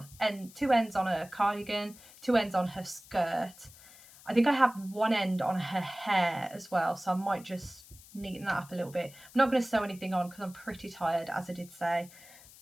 two ends on her cardigan, 2 ends on her skirt. I think I have one end on her hair as well, so I might just neaten that up a little bit. I'm not going to sew anything on because I'm pretty tired, as I did say.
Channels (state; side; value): noise; left; hiss, 21 dB below the sound